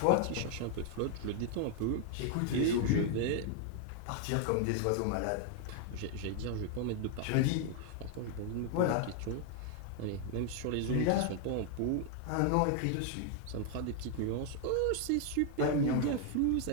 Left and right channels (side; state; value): both; different; correlation 0.00